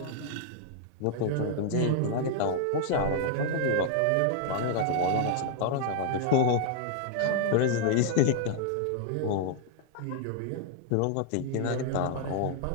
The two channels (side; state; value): both; different; correlation 0.00